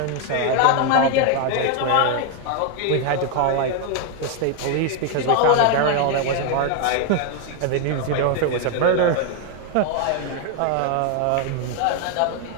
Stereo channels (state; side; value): different; both; correlation 0.01